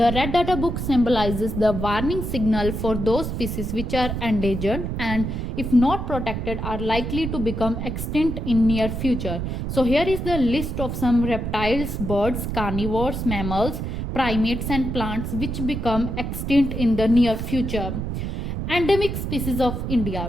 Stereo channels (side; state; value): right; noise; rumble, 4 dB below the sound